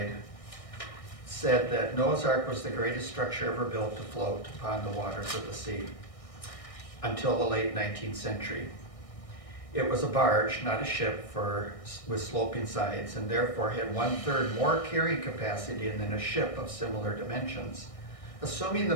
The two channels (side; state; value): right; late; 1.6 ms